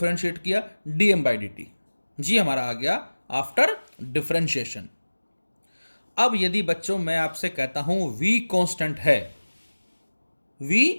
किया dm by dt। जी हमारा आ गया आफ्टर डिफरेंशिएशन। अब यदि बच्चों मैं आपसे कहता हूं v कांस्टेंट है, v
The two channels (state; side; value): inverted; both; correlation -1.00